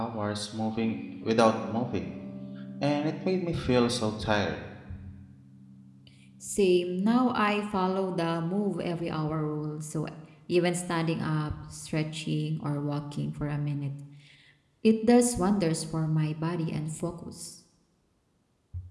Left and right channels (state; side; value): identical; both; correlation 1.00